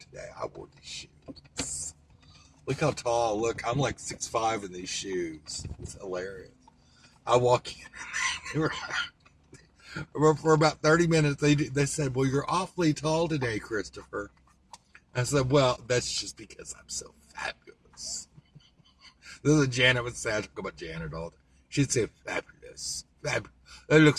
I wore these shoes. Look how tall. Look, I'm like 6'5" in these shoes. It's hilarious. I walk in for about 30 minutes. They said, "Well, you're awfully tall today, Christopher." I said, "Well, that's just because I'm so fabulous." This is what Janet would say. I talk about Janet all the time. She'd say, "Fabulous. That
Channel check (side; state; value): both; identical; correlation 1.00